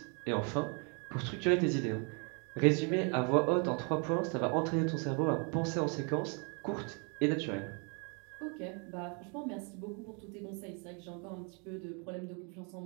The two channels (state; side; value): quieter; left; 36.2 dB